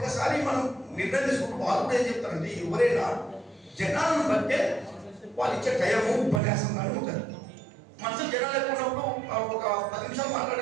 మనం నిర్ణయం తీసుకుంటూ వాళ్ళు కూడా ఏం చెప్తారంటే ఎవరైనా జనాలను బట్టే వాళ్ళు ఇచ్చే టైము ఉపన్యాసం కానీ ఉంటుంది. మనసు జనాలు ఎక్కువ ఉన్నప్పుడు ఒక 10 నిమిషాలు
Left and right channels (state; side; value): drops out; left; at 6.4 s